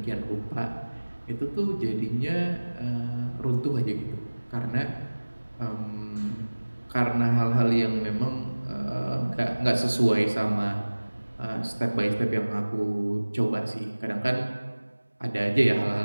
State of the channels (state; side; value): inverted; both; correlation -1.00